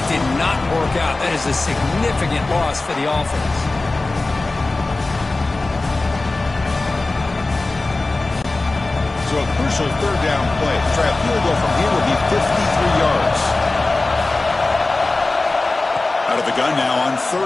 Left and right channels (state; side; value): quieter; right; 3.2 dB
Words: did not work out. That is a significant loss for the offense. So a crucial third down play. Try a field goal from here would be 53 yards. Out of the gun now on